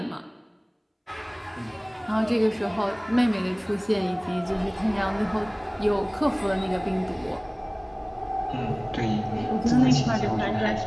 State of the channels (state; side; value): identical; both; correlation 1.00